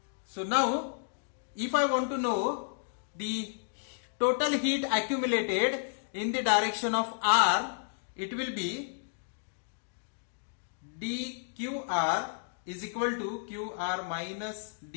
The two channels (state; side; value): silent; right; digital silence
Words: So now if I want to know the total heat accumulated in the direction of r, it will be dqr is equal to qr minus